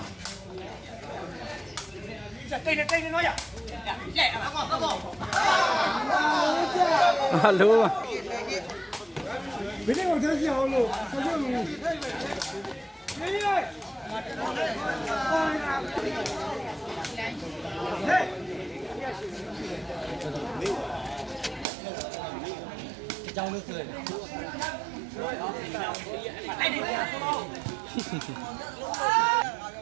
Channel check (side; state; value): left; drops out; at 21.7 s